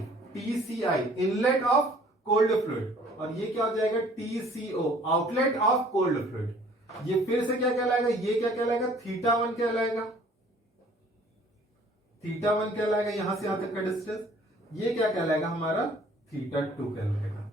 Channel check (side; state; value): both; normal; correlation 0.55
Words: inlet of cold fluid, और ये क्या हो जाएगा TCO outlet of cold fluid. ये फिर से क्या कहलाएगा, ये क्या कहलाएगा, थीटा 1 कहलाएगा। θ1 कहलाएगा, यहां से यहां तक का डिस्टेंस। ये क्या कहलाएगा हमारा, θ2 कहलाएगा।